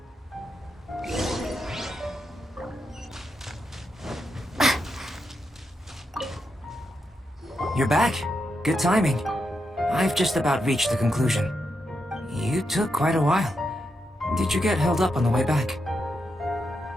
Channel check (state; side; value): normal; both; correlation 0.84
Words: You're back. Good timing. I've just about reached the conclusion. You took quite a while. Did you get held up on the way back?